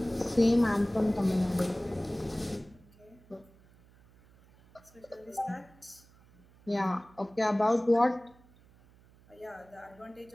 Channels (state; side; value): noise; right; hum, 27 dB below the sound